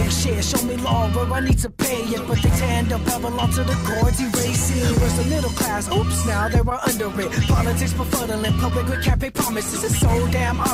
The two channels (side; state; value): both; identical; correlation 1.00